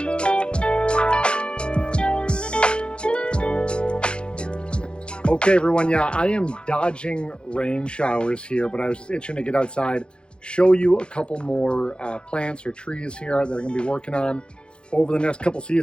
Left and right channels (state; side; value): late; right; 0.054 ms